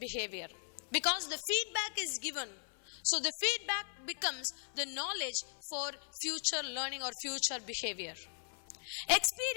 Because the feedback is given, so the feedback becomes the knowledge for future learning or future behavior.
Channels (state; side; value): silent; right; 52 dB below the other